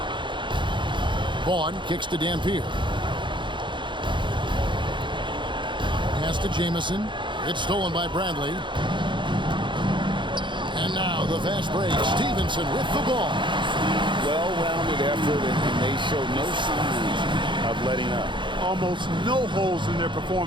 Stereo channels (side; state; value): left; late; 0.23 ms